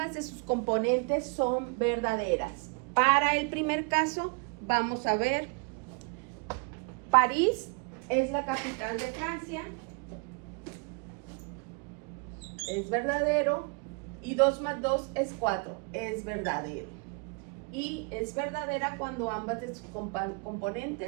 de sus componentes son verdaderas. Para el primer caso, vamos a ver, París es la capital de Francia, es verdadero, y 2 más 2 es 4, es verdadero. Y es verdadera cuando ambas de sus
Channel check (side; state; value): left; quieter; 33.9 dB